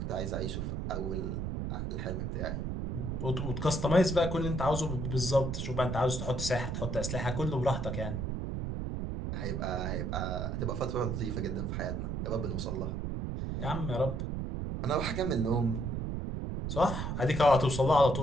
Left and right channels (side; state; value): right; noise; rumble, 2 dB below the sound